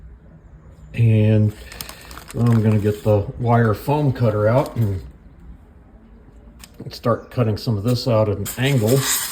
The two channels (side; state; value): both; identical; correlation 1.00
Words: and I'm going to get the wire foam cutter out and start cutting some of this out at an angle.